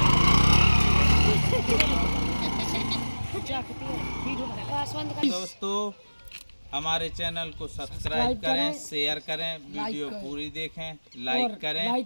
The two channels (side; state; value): both; inverted; correlation -1.00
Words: दोस्तों हमारे चैनल को सब्सक्राइब करें, शेयर करें, वीडियो पूरी देखें, लाइक करें,